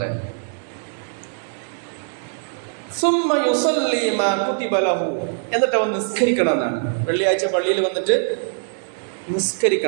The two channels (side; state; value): left; silent; digital silence